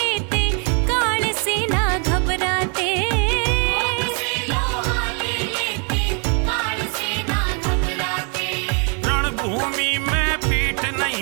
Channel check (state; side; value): quieter; left; 37.8 dB